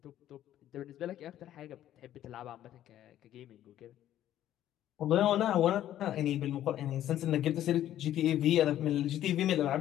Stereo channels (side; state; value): right; quieter; 12.2 dB